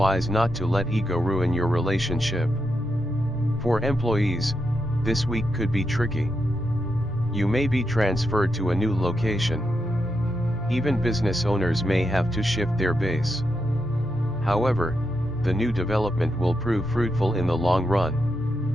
not to let ego ruin your relationship. For employees, this week could be tricky. You may be transferred to a new location. Even business owners may have to shift their base. However, the new development will prove fruitful in the long run.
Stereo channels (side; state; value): left; noise; hum, 22 dB below the sound